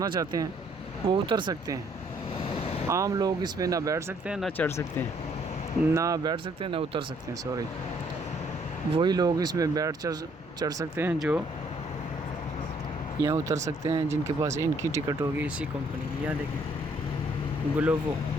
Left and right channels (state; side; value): normal; both; correlation 0.65